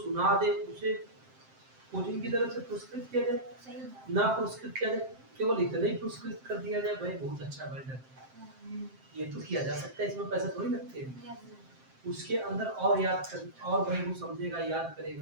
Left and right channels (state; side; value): late; left; 7.6 ms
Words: सुना दे उसे कोचिंग की तरफ से पुरस्कृत किया जाए, ना पुरस्कृत किया जाए, केवल इतना ही पुरस्कृत कर दिया जाए, भाई बहुत अच्छा बेटर, ये तो किया जा सकता है, इसमें पैसे थोड़ी लगते हैं। उसके अंदर और याद कर, और भाई वो समझेगा, याद